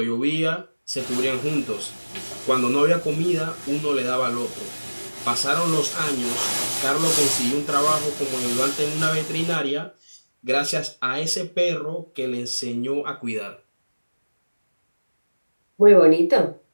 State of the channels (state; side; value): inverted; both; correlation -1.00